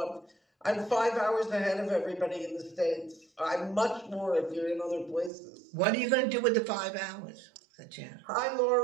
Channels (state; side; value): drops out; left; at 5.3 s